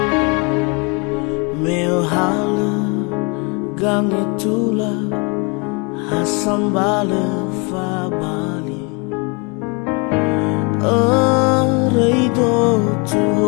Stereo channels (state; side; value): quieter; right; 31.6 dB